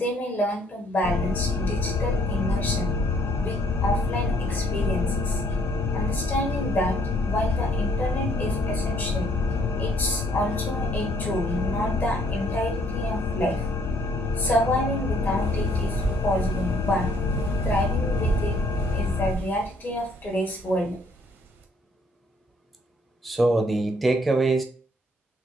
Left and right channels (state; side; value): normal; both; correlation 0.64